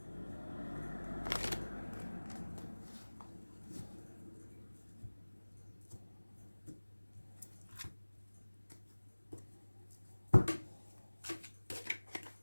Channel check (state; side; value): inverted; both; correlation -1.00